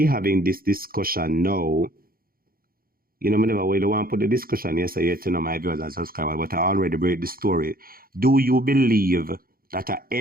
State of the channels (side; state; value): left; late; 0.42 ms